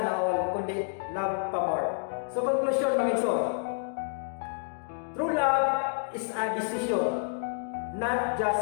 all, kundi love pa more. So conclusion mga igsoon, true love is a decision, not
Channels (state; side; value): silent; right; digital silence